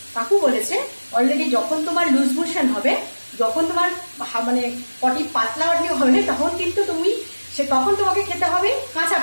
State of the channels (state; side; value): inverted; both; correlation -1.00